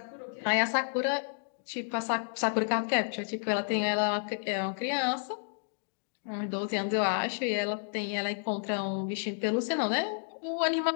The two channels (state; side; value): silent; right; digital silence